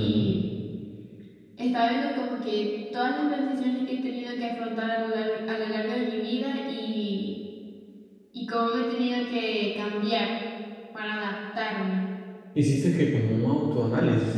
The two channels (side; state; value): both; identical; correlation 1.00